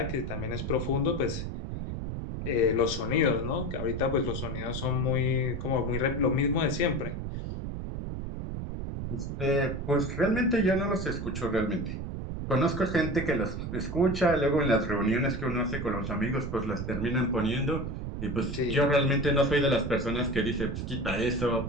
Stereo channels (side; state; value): right; noise; rumble, 5 dB below the sound